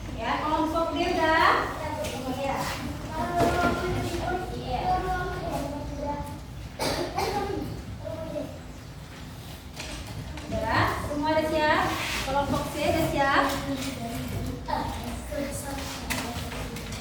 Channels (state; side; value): identical; both; correlation 1.00